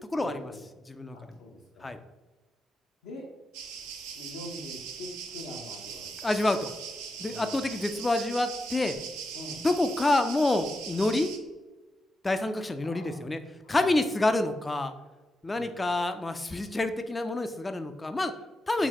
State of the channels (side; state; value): both; normal; correlation 0.88